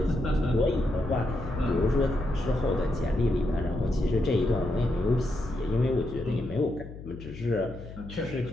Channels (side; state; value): left; noise; hum, 13 dB below the sound